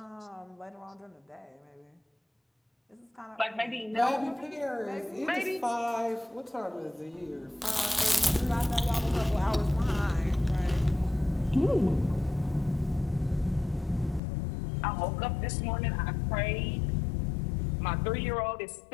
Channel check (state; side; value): drops out; right; at 14.2 s